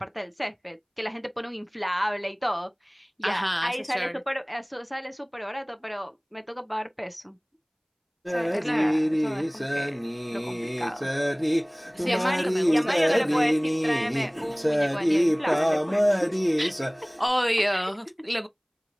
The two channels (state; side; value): identical; both; correlation 1.00